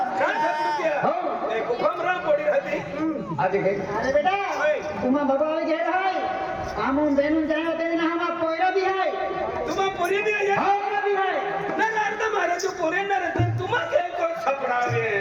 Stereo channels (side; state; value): both; identical; correlation 1.00